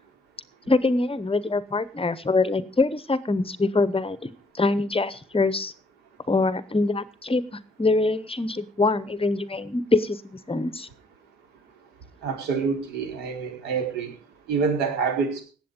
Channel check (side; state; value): both; normal; correlation 0.62